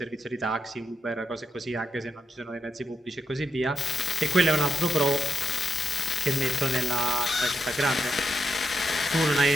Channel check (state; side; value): normal; both; correlation 0.81